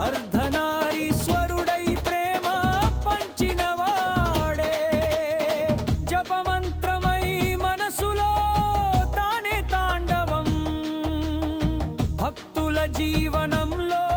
అర్ధనారీశ్వరుడై ప్రేమ పంచినవాడే జపమంత్రమై మనసులో తానే తాండవం భక్తుల జీవనంలో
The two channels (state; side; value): identical; both; correlation 1.00